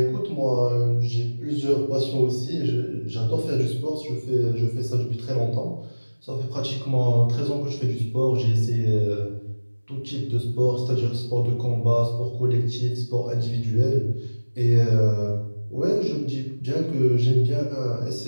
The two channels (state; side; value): inverted; both; correlation -1.00